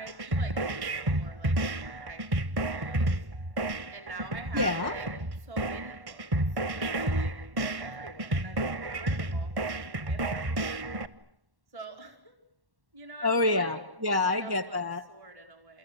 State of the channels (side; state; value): left; late; 1.1 ms